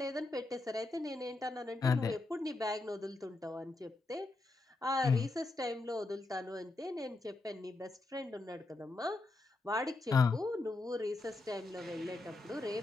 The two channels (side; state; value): right; quieter; 3.1 dB